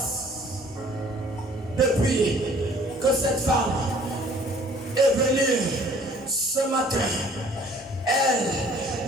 depuis que cette femme est venue ce matin,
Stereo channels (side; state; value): both; normal; correlation 0.55